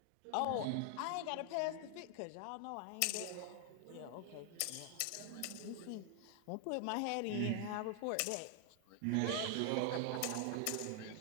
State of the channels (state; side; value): different; both; correlation 0.00